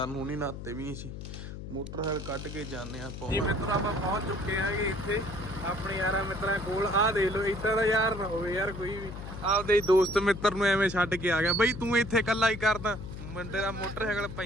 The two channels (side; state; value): left; noise; hum, 9 dB below the sound